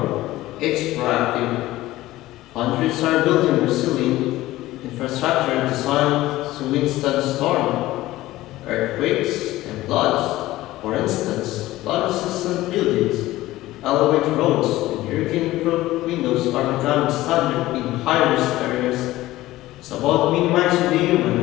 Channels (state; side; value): quieter; right; 16.7 dB